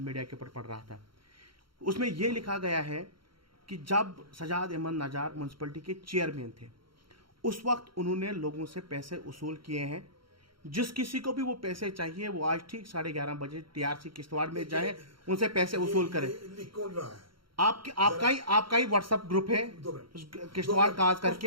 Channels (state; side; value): late; left; 0.73 ms